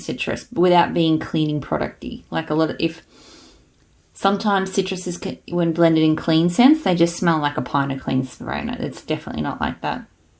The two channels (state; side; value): identical; both; correlation 1.00